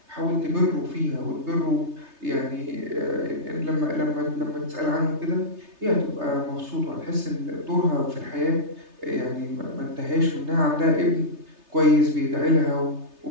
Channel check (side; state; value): left; late; 3.3 ms